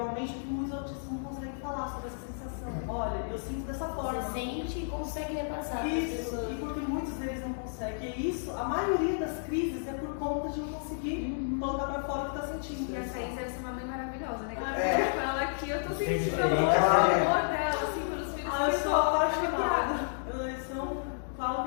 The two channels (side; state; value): right; silent; digital silence